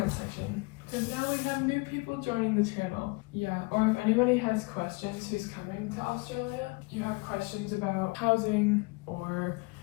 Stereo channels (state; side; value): quieter; right; 27.9 dB